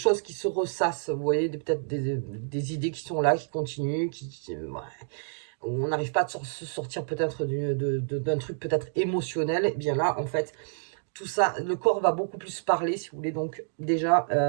qui se ressassent, vous voyez, peut-être des idées qui sont là, qui continuent, ouais, on n'arrive pas à se sortir peut-être d'un truc peut-être émotionnel. Et bien là, en fait, tout ça, le corps va beaucoup plus parler, si vous voulez. Donc déjà,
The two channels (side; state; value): left; silent; digital silence